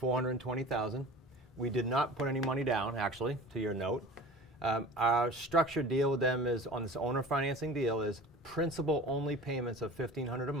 We did not put any money down, actually, to your note. Our structured deal with them is, on this owner financing deal, is principal only payments of $1,500 a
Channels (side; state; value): both; normal; correlation 0.39